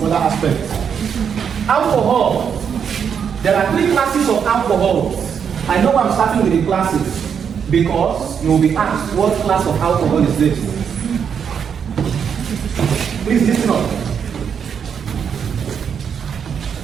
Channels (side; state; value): left; quieter; 7.3 dB